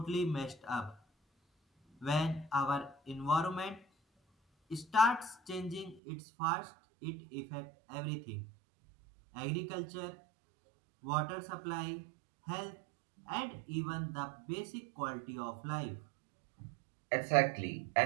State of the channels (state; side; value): drops out; left; at 6.0 s